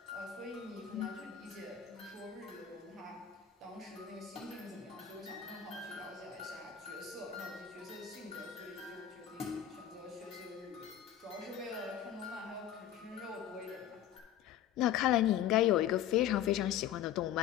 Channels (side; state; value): right; quieter; 10.3 dB